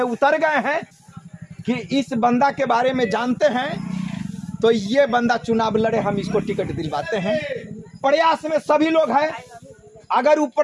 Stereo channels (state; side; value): identical; both; correlation 1.00